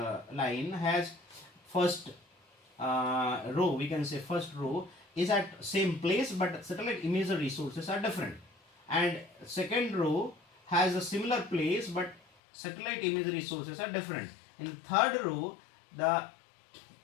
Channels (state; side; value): drops out; right; at 12.2 s